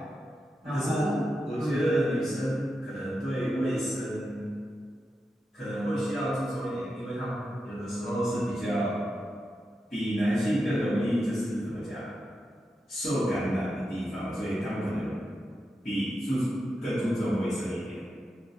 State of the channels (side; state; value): both; normal; correlation 0.88